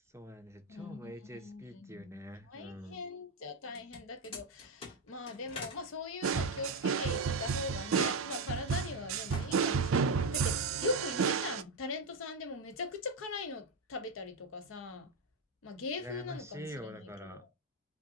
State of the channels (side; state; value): left; quieter; 3.1 dB